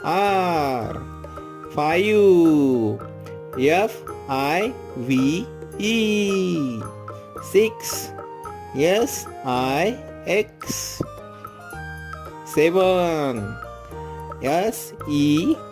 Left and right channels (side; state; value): both; identical; correlation 1.00